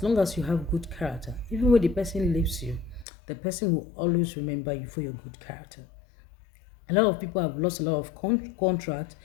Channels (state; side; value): drops out; right; at 3.1 s